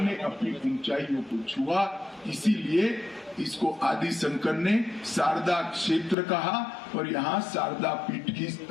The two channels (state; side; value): drops out; right; at 6.2 s